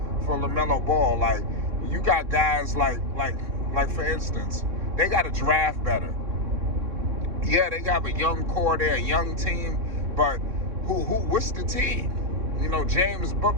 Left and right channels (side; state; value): left; late; 3.6 ms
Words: for LaMelo Ball. Like, you got guys like for instance, they got to draft better. Yeah, they got a young core there, a young team, but what's the team? James